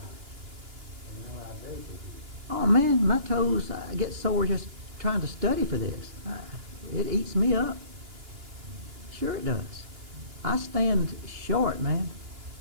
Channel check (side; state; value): left; late; 2.9 ms